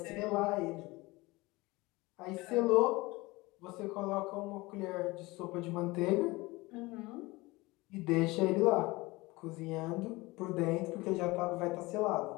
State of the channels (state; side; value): quieter; right; 22.0 dB